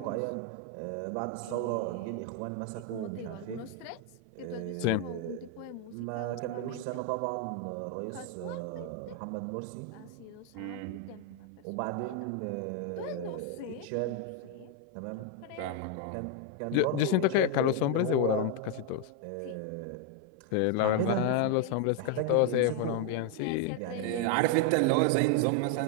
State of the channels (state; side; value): different; both; correlation 0.01